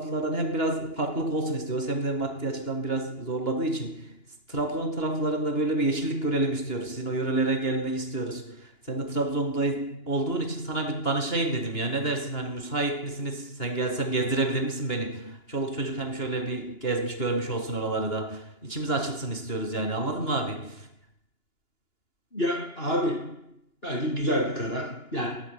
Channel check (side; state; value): right; late; 2.9 ms